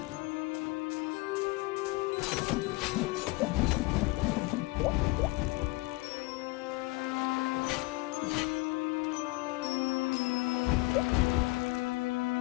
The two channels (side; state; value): right; quieter; 23.8 dB